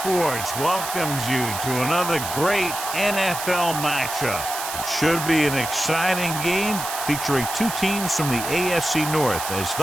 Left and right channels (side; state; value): right; noise; hiss, 6 dB below the sound